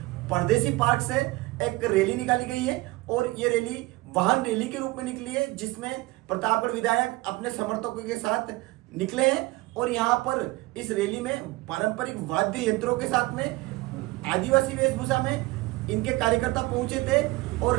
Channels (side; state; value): left; quieter; 20.8 dB